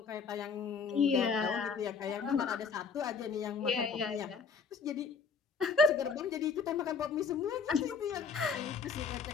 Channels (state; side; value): quieter; right; 5.4 dB